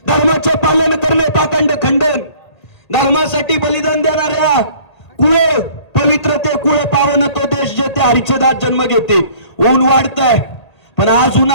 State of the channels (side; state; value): right; late; 1.8 ms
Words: धर्माचे पालन करणे पाखंड खंडन धर्मासाठी बलिदान देणाऱ्या कुळे पवित्र ते कुळे पावन तो देश जेथे हरिचदात जन्म घेते ऊन वाढतंय पण आज